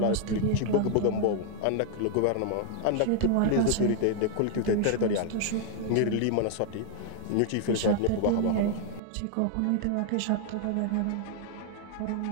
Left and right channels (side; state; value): both; different; correlation 0.00